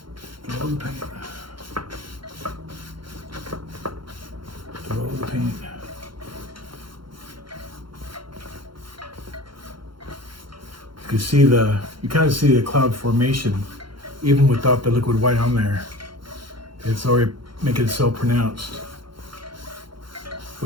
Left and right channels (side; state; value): left; late; 0.73 ms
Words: throw the paint, throw the paint. You kind of see the cloud formation even without the liquid white on there. It's already making it so pronounced,